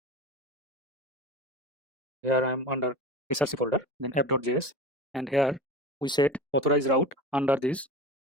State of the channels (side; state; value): both; normal; correlation 0.31